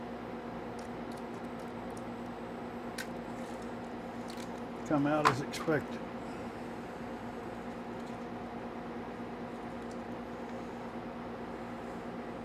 come out as expected.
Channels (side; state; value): both; identical; correlation 1.00